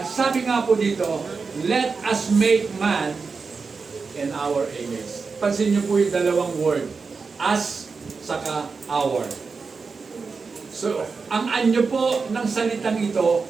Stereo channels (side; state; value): left; quieter; 4.8 dB